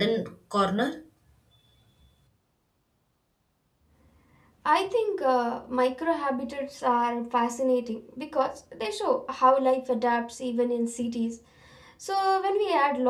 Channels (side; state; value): both; identical; correlation 1.00